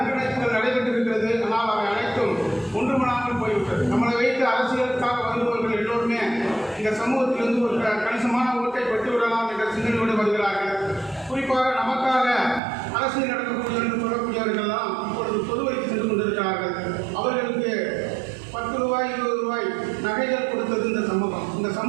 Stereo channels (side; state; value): left; drops out; at 12.6 s